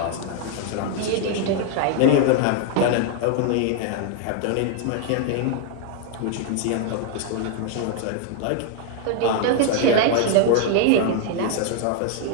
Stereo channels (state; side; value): different; both; correlation 0.00